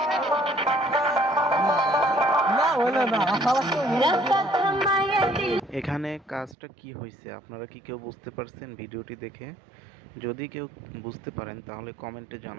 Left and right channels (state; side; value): drops out; left; at 6.6 s